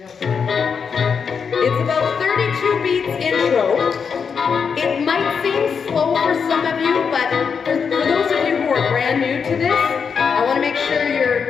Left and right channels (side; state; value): right; quieter; 6.2 dB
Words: about 32 beats intro. It might seem slow for some of you, but for those of you who are brand new to this, I want to make sure